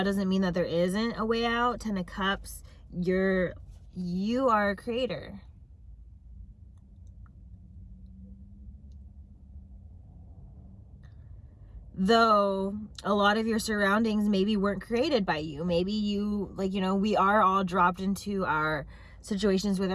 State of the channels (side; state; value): both; identical; correlation 1.00